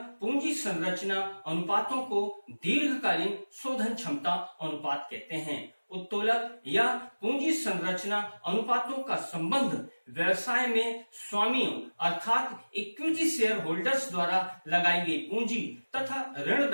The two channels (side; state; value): both; inverted; correlation -1.00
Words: पूंजी संरचना अनुपातों को दीर्घकालीन शोधन क्षमता अनुपात कहते हैं। उत्तोलक या पूंजी संरचना अनुपातों का संबंध व्यवसाय में स्वामियों अर्थात इक्विटी शेयर होल्डर्स द्वारा लगाई गई पूंजी तथा